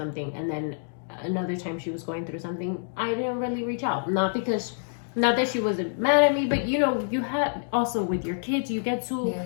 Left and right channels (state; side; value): silent; right; digital silence